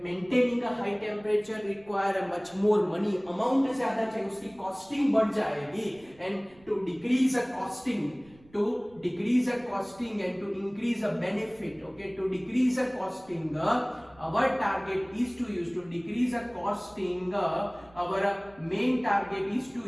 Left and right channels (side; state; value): right; noise; rumble, 27 dB below the sound